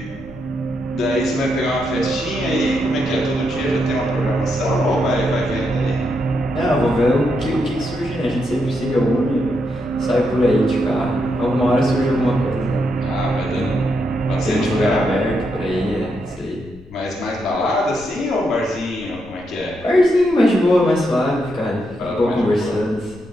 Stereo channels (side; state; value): left; noise; rumble, 22 dB below the sound